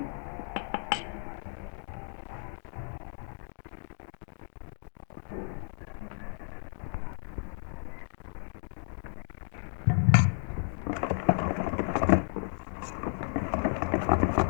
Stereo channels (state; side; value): silent; right; digital silence